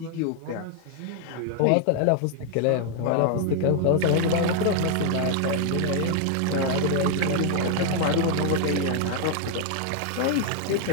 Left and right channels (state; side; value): different; both; correlation 0.00